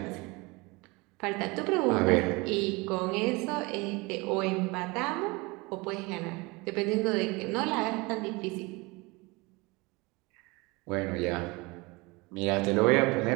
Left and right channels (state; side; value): quieter; left; 25.3 dB